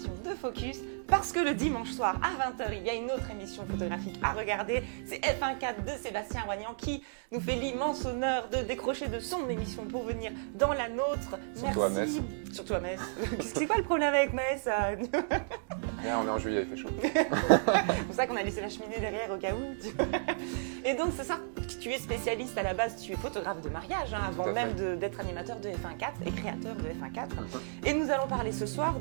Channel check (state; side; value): silent; left; digital silence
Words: de Focus, parce que le dimanche soir à 20h, il y a une autre émission photographique à regarder, c'est F1.4 de Sébastien Roignan qui nous fait l'immense honneur de décrocher de son émission pour venir dans la nôtre. Surtout à Metz. Surtout à Metz. C'est quoi le problème avec Metz? On est en juillet, il fait chaud. C'est pour ça qu'on a laissé la cheminée derrière au cas où. Et donc c'est ça, tu es spécialiste à la base, tu es photographe de mariage, avant même d'être animateur de F1.4 et créateur de F1.4. Et nous allons parler ce soir